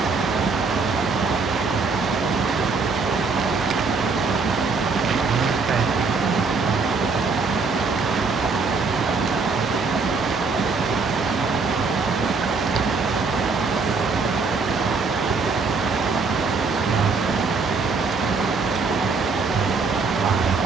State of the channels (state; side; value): quieter; left; 4.5 dB